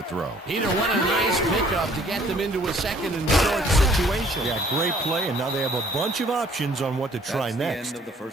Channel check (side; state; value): both; normal; correlation 0.58